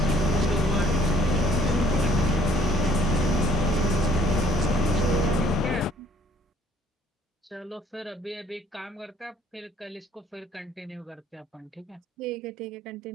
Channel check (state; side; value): normal; both; correlation 0.59